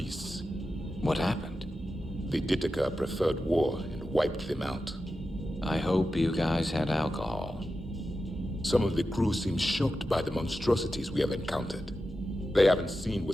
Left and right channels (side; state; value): both; normal; correlation 0.91